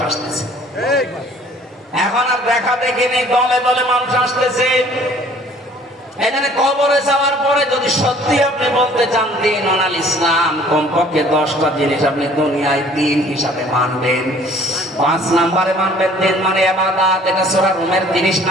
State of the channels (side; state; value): both; normal; correlation 0.54